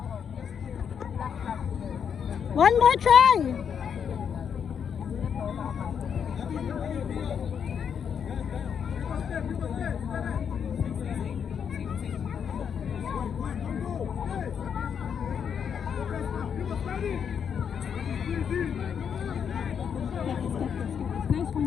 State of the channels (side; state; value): right; quieter; 7.5 dB